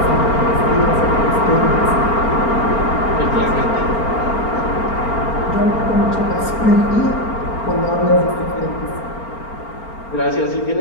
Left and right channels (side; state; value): right; late; 4.4 ms